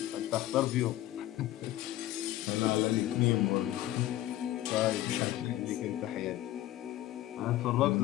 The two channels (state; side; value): quieter; right; 14.6 dB